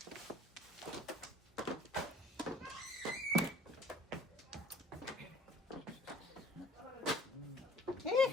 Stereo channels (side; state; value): both; normal; correlation 0.51